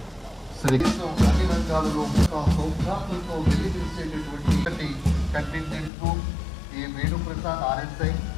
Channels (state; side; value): drops out; right; at 5.9 s